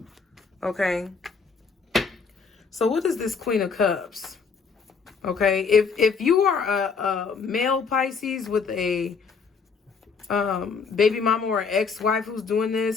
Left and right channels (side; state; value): right; quieter; 5.4 dB